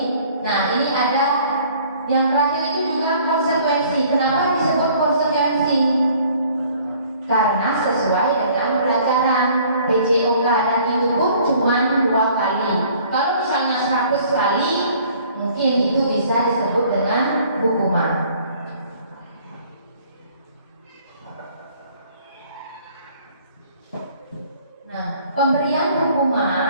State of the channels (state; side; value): inverted; both; correlation -0.56